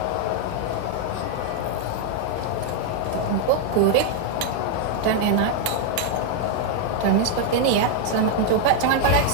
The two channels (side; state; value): both; different; correlation 0.00